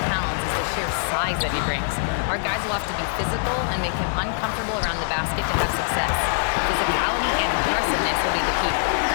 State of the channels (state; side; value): silent; right; digital silence